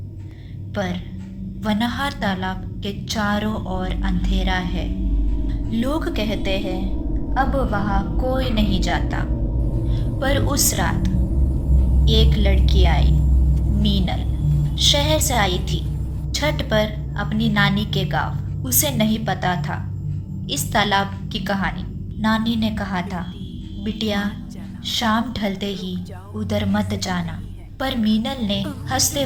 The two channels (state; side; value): identical; both; correlation 1.00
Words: पर वनहार तालाब के चारों ओर अंधेरा है। लोग कहते हैं अब वहाँ कोई नहीं जाता। पर उस रात एक लड़की आई, मीनल। शहर से आई थी छठ पर अपनी नानी के गांव। उसे नहीं पता था इस तालाब की कहानी। नानी ने कहा था, बिटिया शाम ढलते ही उधर मत जाना। पर मीनल ने हंसते